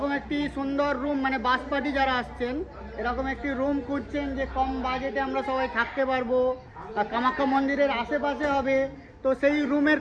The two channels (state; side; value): identical; both; correlation 1.00